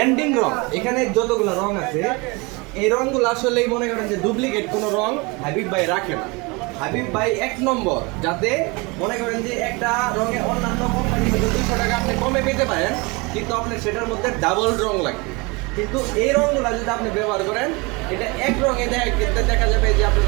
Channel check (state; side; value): quieter; left; 27.1 dB